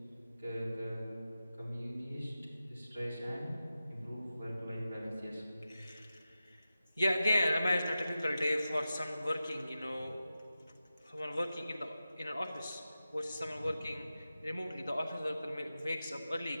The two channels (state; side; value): inverted; both; correlation -0.93